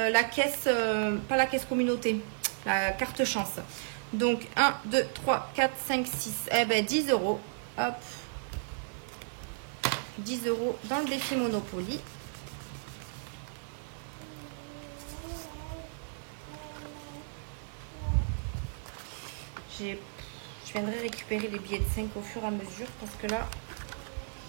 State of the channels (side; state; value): left; silent; 55 dB below the other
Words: la caisse, pas la caisse communauté, la carte chance. Donc, 1, 2, 3, 4, 5, 6. Eh ben, 10 €. Hop. 10 € dans le défi Monopoly. je viendrai récupérer les billets de 5 au fur et à mesure parce que là,